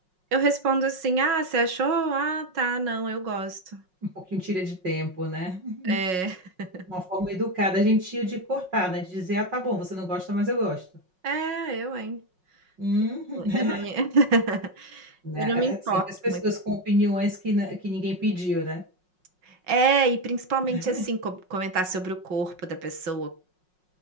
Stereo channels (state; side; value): late; left; 5.5 ms